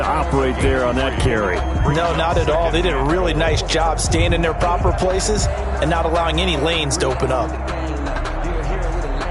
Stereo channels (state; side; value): identical; both; correlation 1.00